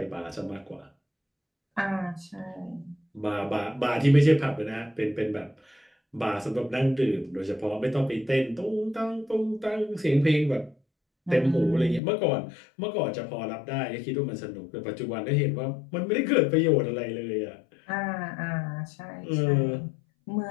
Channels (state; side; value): drops out; right; at 12.0 s